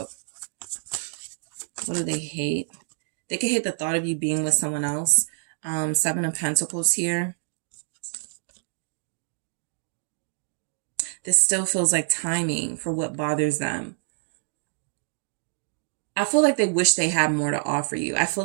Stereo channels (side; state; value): left; silent; digital silence